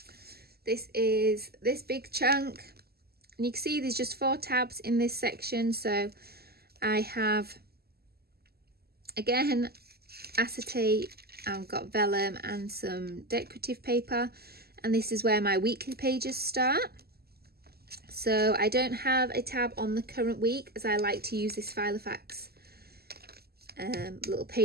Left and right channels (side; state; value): left; late; 0.46 ms